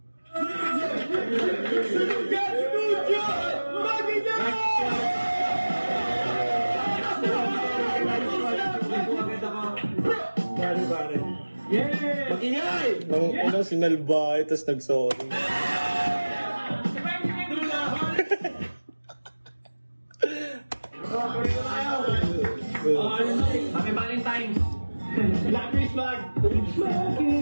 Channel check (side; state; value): both; inverted; correlation -1.00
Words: Mag-ingay! Nang sinalbay, tapos nag-sorry. Happy Valentine's! Black Christmas!